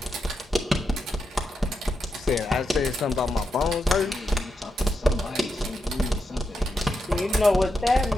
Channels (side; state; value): both; normal; correlation 0.85